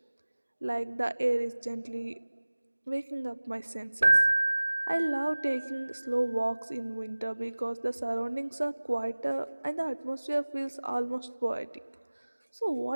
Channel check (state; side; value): inverted; both; correlation -1.00